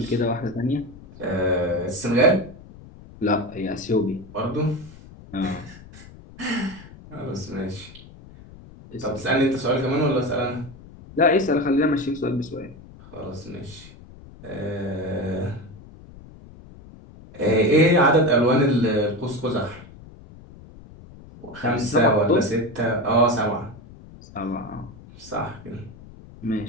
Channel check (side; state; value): left; noise; rumble, 19 dB below the sound